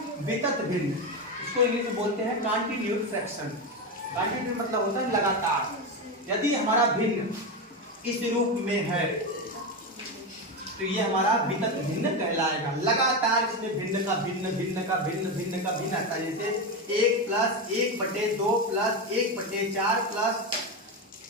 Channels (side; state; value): both; normal; correlation 0.14